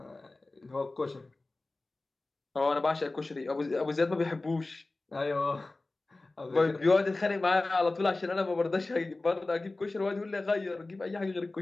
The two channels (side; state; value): right; quieter; 3.1 dB